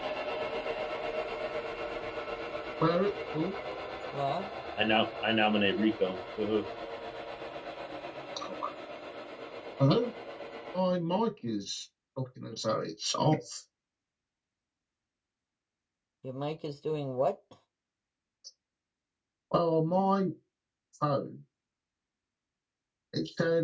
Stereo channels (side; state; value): both; identical; correlation 1.00